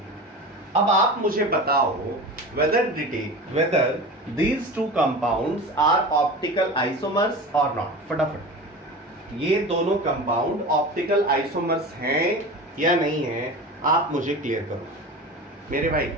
अब आप मुझे बताओ whether these two compounds are optical isomers or not. फटाफट ये दोनों कंपाउंड ऑप्टिकल आइसोमर्स हैं या नहीं हैं, आप मुझे क्लियर करो मेरे भाई.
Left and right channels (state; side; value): normal; both; correlation 0.32